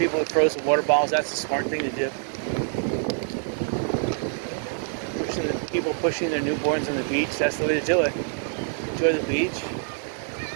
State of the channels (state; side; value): silent; left; 61 dB below the other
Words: with frozen water bottles, that's a smart thing to do. People pushing their newborns on the beach, that's the way to do it. Enjoy the beach.